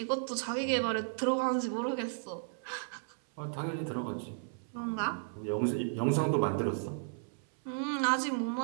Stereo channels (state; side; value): silent; left; 55 dB below the other